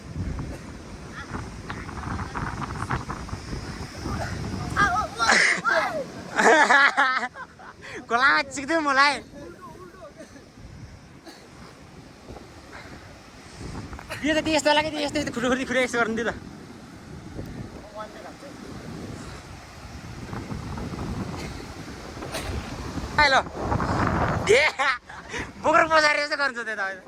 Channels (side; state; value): both; identical; correlation 1.00